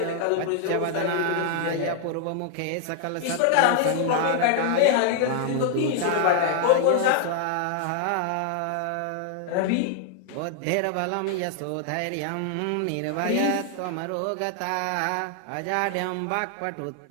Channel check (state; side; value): different; both; correlation 0.00